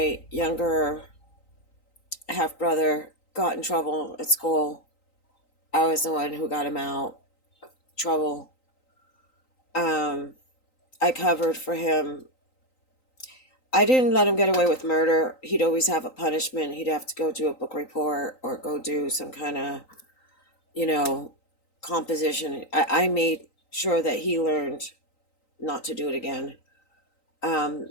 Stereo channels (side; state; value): right; late; 3.9 ms